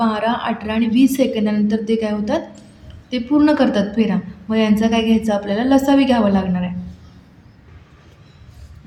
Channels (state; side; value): identical; both; correlation 1.00